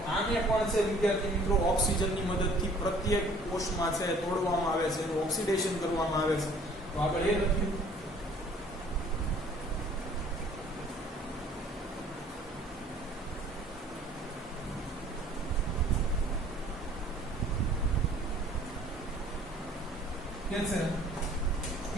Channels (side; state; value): both; normal; correlation 0.54